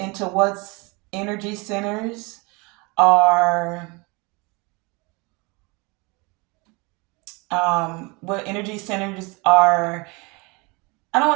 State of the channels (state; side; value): quieter; left; 27.5 dB